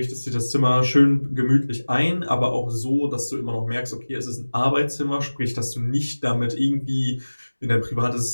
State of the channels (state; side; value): inverted; both; correlation -1.00